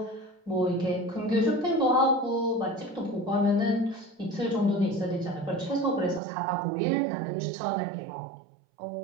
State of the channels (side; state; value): left; drops out; at 6.2 s